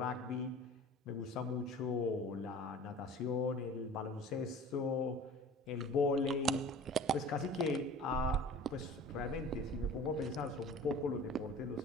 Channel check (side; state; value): both; normal; correlation 0.43